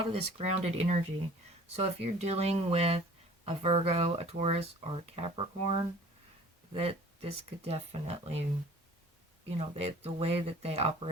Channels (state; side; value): normal; both; correlation 0.48